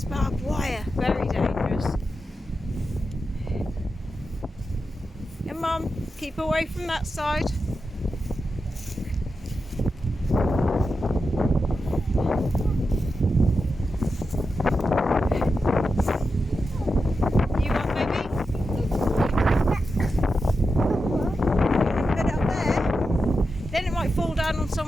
barbed wire. Very dangerous. And Mum, keep away from that side. You want, baby? Put it up there. Then it might fall down on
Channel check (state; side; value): normal; both; correlation 0.89